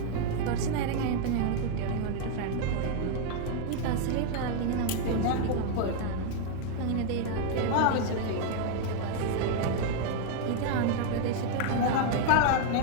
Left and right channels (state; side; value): different; both; correlation 0.00